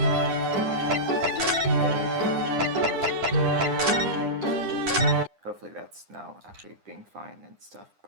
Hopefully that's now actually being fine and stuff,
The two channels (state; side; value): late; left; 9.9 ms